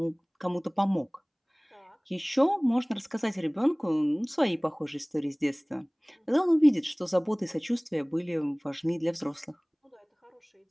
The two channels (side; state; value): both; identical; correlation 1.00